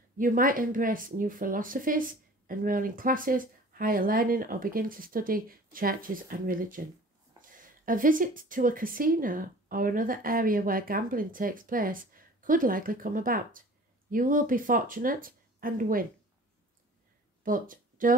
You might embrace new philosophies, enroll in classes, higher learning, or begin to study churches and religion. A visit to a casino or another area where gambling takes place could likely come about. You will be fortunate and win. But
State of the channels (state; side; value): normal; both; correlation 0.45